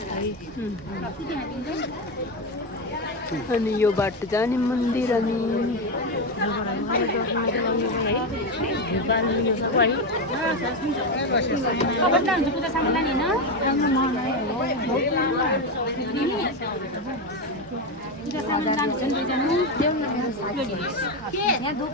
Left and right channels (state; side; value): normal; both; correlation 0.12